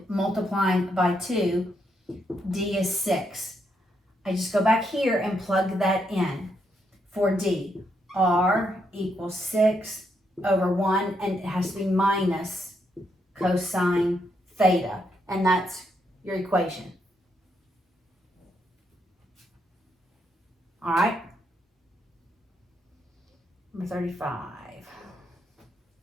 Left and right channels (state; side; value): normal; both; correlation 0.78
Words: multiplying by 2, D is 6. I just go back here and plug that in for D. R equals 6 over 1, and it has to be minus cosine theta, and that's your equation. All right, number 35.